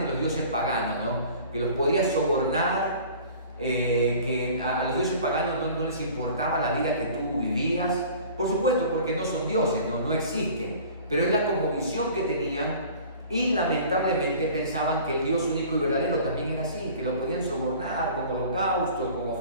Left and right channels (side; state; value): both; inverted; correlation -0.46